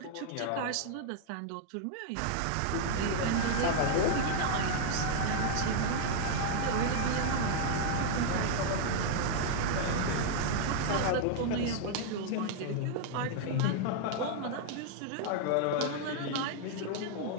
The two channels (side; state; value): both; different; correlation -0.01